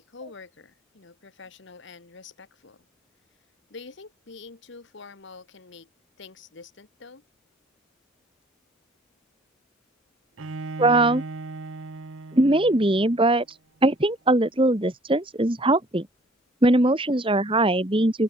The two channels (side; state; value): both; normal; correlation 0.55